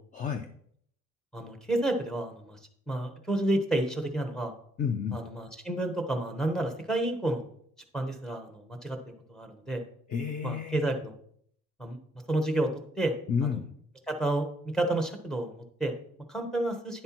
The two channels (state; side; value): normal; both; correlation 0.72